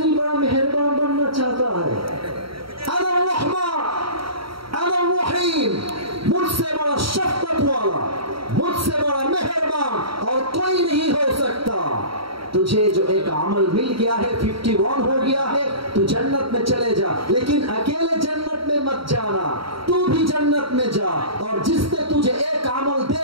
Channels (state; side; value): late; left; 0.75 ms